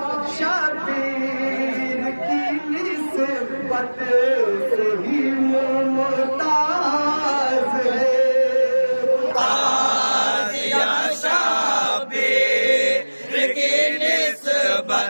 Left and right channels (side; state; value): both; inverted; correlation -1.00